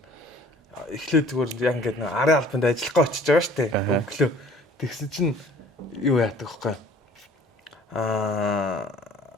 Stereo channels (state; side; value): normal; both; correlation 0.52